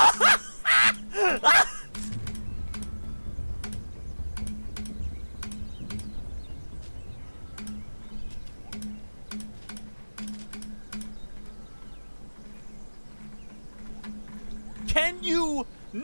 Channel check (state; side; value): inverted; both; correlation -1.00